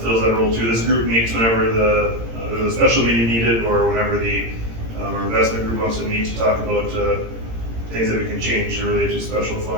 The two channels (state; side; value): late; left; 17 ms